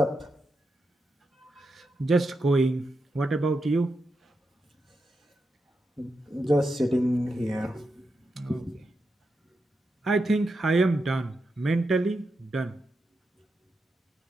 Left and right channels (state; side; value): normal; both; correlation 0.86